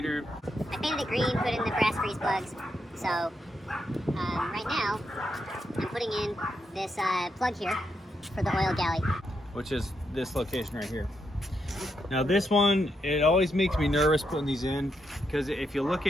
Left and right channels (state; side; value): normal; both; correlation 0.81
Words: I painted it green, put in the brass grease plugs. So, right now, I'm putting in this plug here for the Oil Galley. Which is this location right here. Now this one, it always makes me nervous putting these in, because if you look